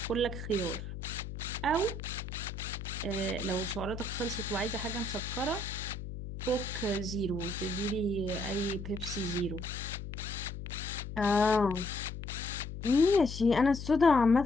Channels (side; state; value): left; noise; hum, 8 dB below the sound